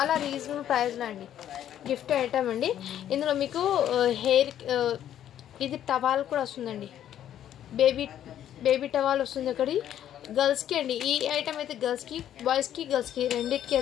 రీజనబుల్ ప్రైస్లో అండి గిఫ్ట్ ఐటమ్ అండి ఇందులో మీకు హెయిర్ ఇది టవాల్ కూడా వస్తుందండి బేబీ టవాల్ వస్తుంది ఒకటి గర్ల్స్కి అండి ఈ ఐటమ్ అయితే గర్ల్స్కి బాయ్స్కి రెండింటికి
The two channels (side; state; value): right; quieter; 10.9 dB